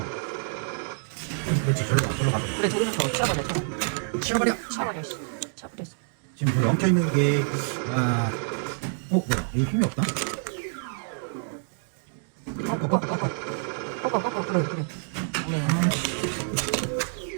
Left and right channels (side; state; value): left; silent; digital silence